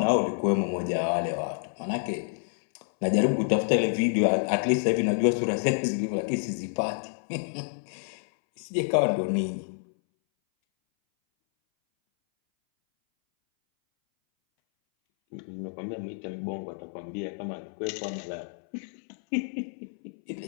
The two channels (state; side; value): silent; right; 59 dB below the other